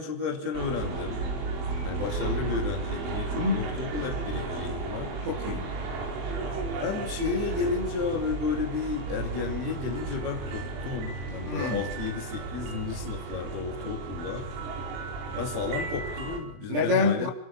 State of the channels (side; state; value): left; late; 24 ms